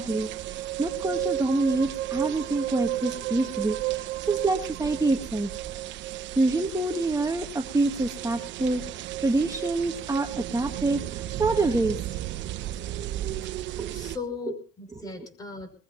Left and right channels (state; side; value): quieter; left; 3.5 dB